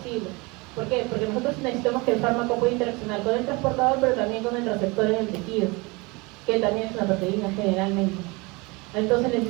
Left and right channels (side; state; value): left; quieter; 25.9 dB